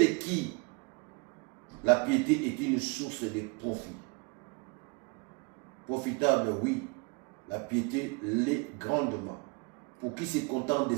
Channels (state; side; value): quieter; left; 31.6 dB